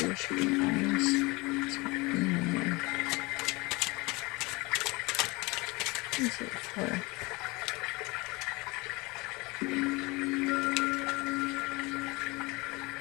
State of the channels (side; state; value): right; quieter; 24.6 dB